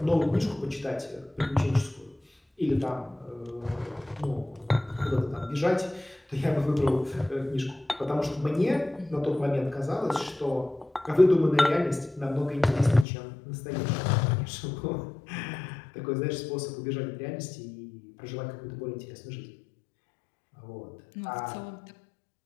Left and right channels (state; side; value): drops out; right; at 13.1 s